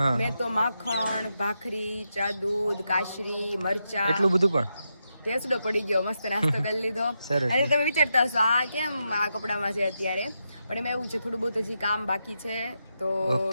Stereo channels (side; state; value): both; inverted; correlation -0.85